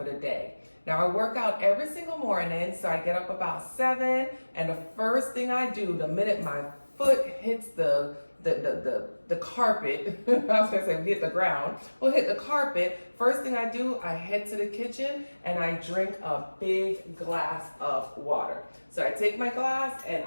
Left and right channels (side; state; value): both; inverted; correlation -1.00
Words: the day. Now I work out every single morning, so I get up about 7, and the first thing I do, the minute my foot hits the carpet, I was gonna say hit the ground, well, hit the carpet, first thing I do, I head to the kitchen and I drink a big glass of water. So I take my glass and